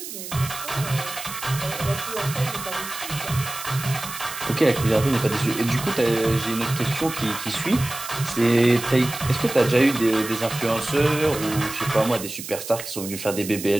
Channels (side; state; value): right; noise; hiss, 10 dB below the sound